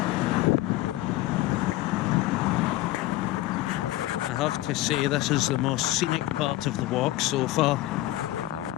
have to say this is the most scenic part of the walk so far.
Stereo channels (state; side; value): quieter; right; 16.6 dB